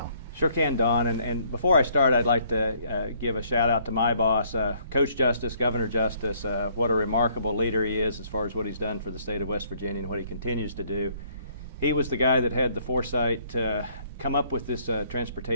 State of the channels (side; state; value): both; inverted; correlation -0.64